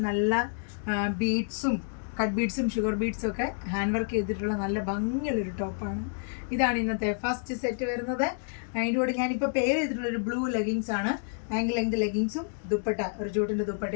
നല്ല ബീഡ്സും കട്ട് ബീഡ്സും ഷുഗർ ബീഡ്സും ഒക്കെ ഹാൻഡ് വർക്ക് ചെയ്തിട്ടുള്ള നല്ല ഭംഗിയുള്ളൊരു ടോപ്പാണ്. ഇതാണ് ഇന്നത്തെ ഫസ്റ്റ് സെറ്റ് വരുന്നത്. അതിൻ്റെ കൂടെ ഞാനിപ്പോൾ പെയർ ചെയ്തിട്ടുള്ളൊരു ബ്ലൂ ലെഗിങ്സ് ആണ്. ആംഗിൾ ലെങ്ത് ലെഗിങ്സും ദുപ്പട്ട, ഒരു ജൂട്ടിൻ്റെ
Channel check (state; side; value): silent; right; digital silence